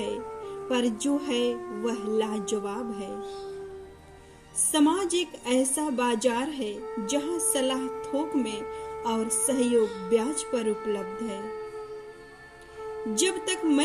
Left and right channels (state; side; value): identical; both; correlation 1.00